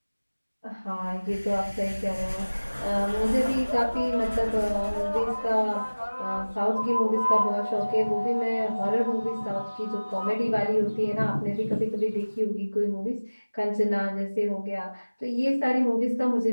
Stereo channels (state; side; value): inverted; both; correlation -1.00